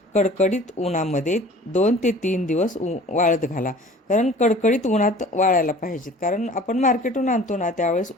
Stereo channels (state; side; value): normal; both; correlation 0.46